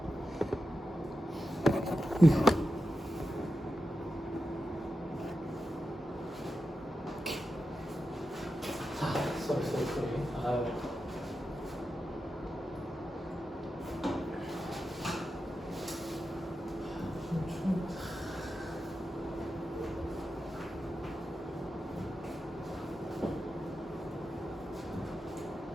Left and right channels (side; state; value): both; normal; correlation 0.90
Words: 자, 쏘리. 아유.